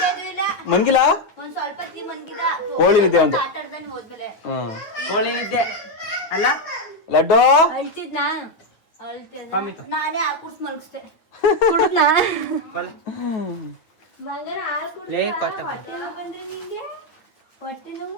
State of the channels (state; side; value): late; right; 9.2 ms